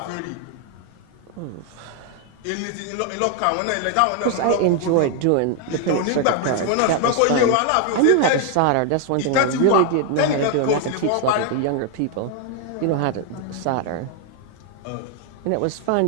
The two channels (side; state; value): both; different; correlation 0.00